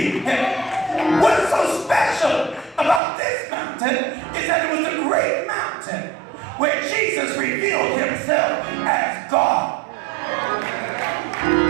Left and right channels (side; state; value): left; drops out; at 3.0 s